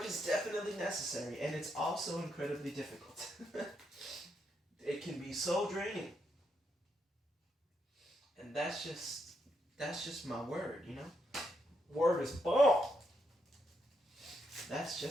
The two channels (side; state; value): both; normal; correlation 0.79